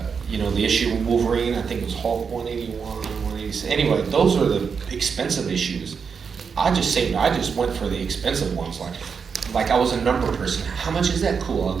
the issue of Wolverine, I think it was Hulk 181, 186. Anyway, those are the expensive issues. I just went for the expensive ones. Like I was a number person. How much is that? Cool, I'll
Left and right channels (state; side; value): quieter; left; 6.0 dB